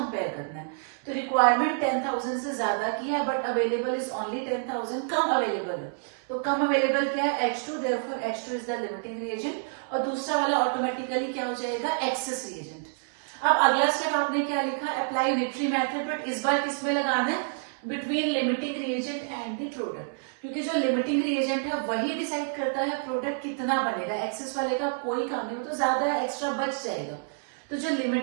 करना है। तो रिक्वायरमेंट 10,000 से ज्यादा की है, but available is only 10,000, come available है। तो कम अवेलेबल क्या है, H2, therefore H2 is the limiting reagent, और दूसरा वाला ऑटोमेटिकली क्या हो जाएगा, एक्सेस रिएजेंट। अब अगला स्टेप आपने क्या लिखा, अप्लाई यूनिटरी मेथड, बट इस बार किसमें लगाना है, between limiting reagent and the product. क्योंकि जो लिमिटिंग रिएजेंट है वही डिसाइड करता है प्रोडक्ट कितना बनेगा, एक्सेस वाले का कोई काम नहीं, वो तो ज्यादा एक्स्ट्रा बच जाएगा। तो जो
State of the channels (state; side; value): silent; left; 59 dB below the other